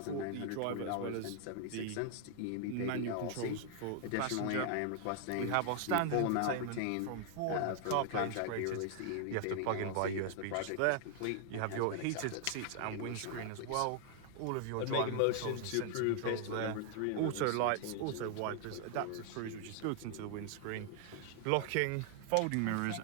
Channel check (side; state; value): both; different; correlation 0.00